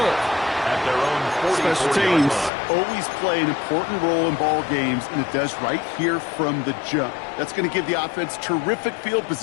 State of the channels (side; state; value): right; drops out; at 2.5 s